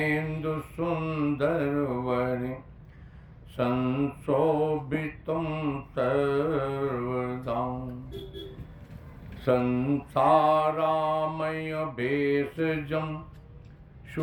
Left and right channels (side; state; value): both; identical; correlation 1.00